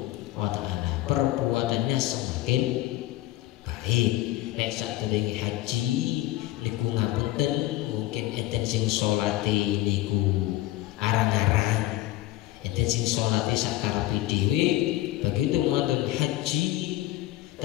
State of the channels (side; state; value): right; quieter; 16.4 dB